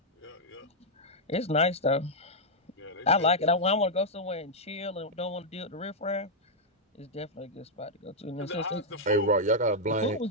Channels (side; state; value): both; normal; correlation -0.05